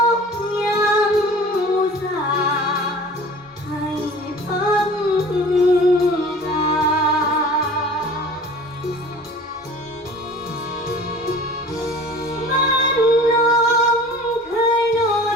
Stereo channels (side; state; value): both; normal; correlation 0.43